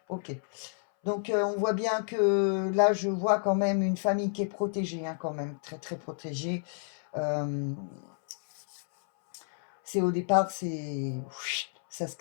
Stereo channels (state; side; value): silent; right; 58 dB below the other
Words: Ok. Donc, on voit bien que là, je vois quand même une famille qui est protégée, hein, quand même, très, très protégée. C'est au départ, ça se